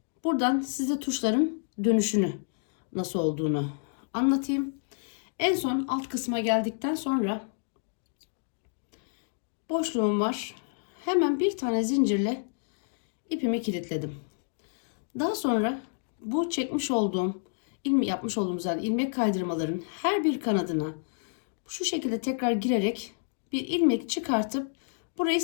buradan size tuşların dönüşünü nasıl olduğunu anlatayım. En son alt kısma geldikten sonra boşluğum var. Hemen bir tane zincirle ipimi kilitledim. Daha sonra bu çekmiş olduğum yapmış olduğumuz yani ilmek kaydırmaların her bir kanadına şu şekilde tekrar girerek bir ilmek çıkartıp burayı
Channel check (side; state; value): right; silent; digital silence